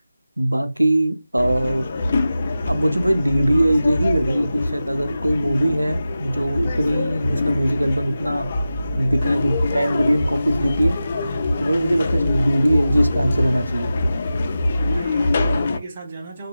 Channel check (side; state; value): both; inverted; correlation -0.94